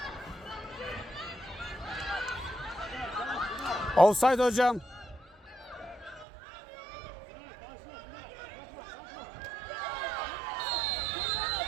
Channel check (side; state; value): left; drops out; at 6.2 s